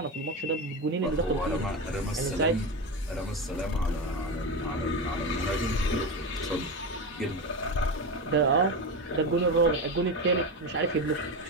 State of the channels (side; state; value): both; normal; correlation 0.18